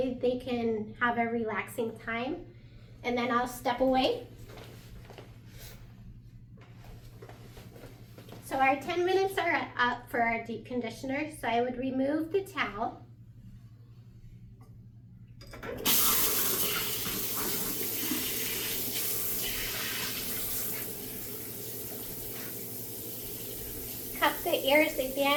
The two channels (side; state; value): both; identical; correlation 1.00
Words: they can have a relaxing time. And then I'll step away. So our 10 minutes are up for our deep conditioner. So I would remove the towel. Cup the ears